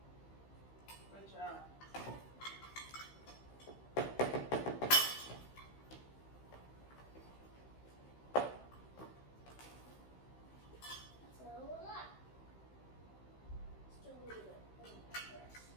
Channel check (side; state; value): right; late; 15 ms